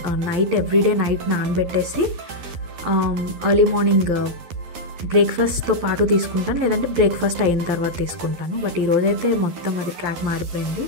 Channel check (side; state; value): left; late; 12 ms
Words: నైట్ ఎవ్రీడే నైట్ నానబెట్టేసి ఎర్లీ మార్నింగ్ బ్రేక్ఫాస్ట్తో పాటు తీసుకుంటాను, లేదంటే బ్రేక్ఫాస్ట్ అయిన తర్వాత తీసుకుంటాను. బట్ ఈరోజైతే మొత్తం అది ట్రాక్ మారిపోయింది